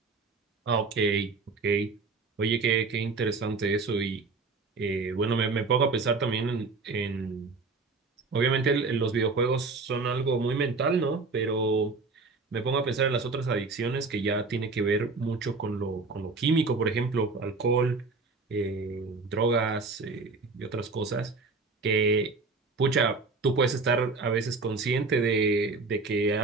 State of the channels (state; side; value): quieter; left; 4.0 dB